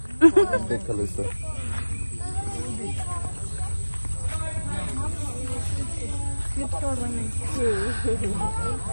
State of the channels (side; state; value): both; inverted; correlation -1.00